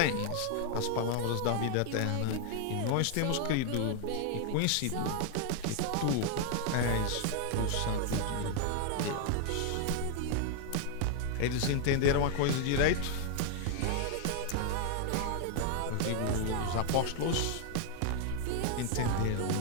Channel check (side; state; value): both; different; correlation 0.00